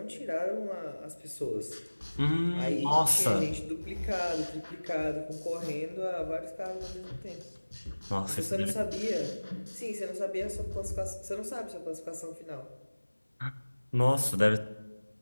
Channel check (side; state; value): both; inverted; correlation -1.00